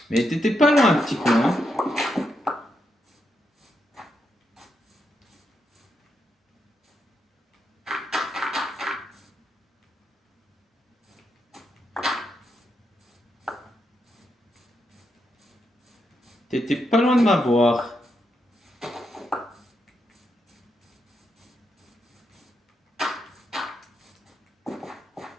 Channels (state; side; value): normal; both; correlation 0.82